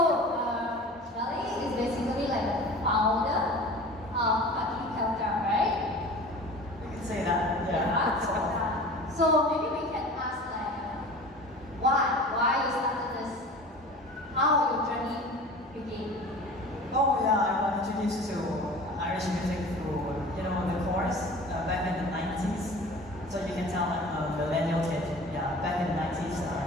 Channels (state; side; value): normal; both; correlation 0.39